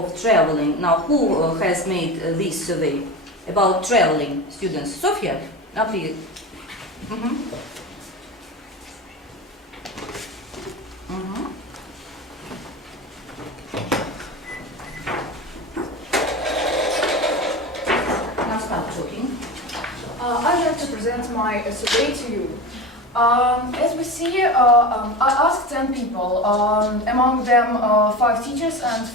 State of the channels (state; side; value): normal; both; correlation 0.28